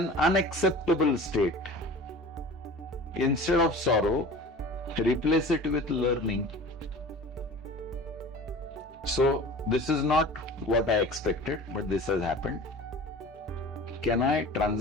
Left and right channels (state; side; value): normal; both; correlation 0.39